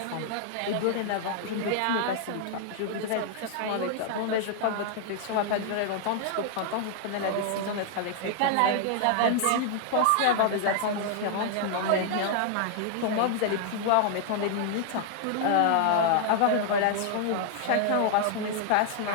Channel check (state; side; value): different; both; correlation -0.01